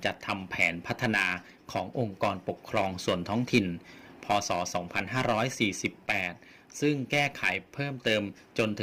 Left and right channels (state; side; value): identical; both; correlation 1.00